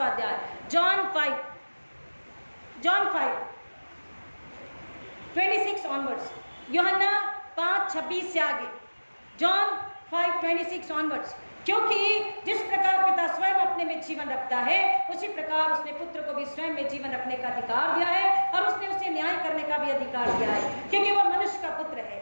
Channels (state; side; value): inverted; both; correlation -1.00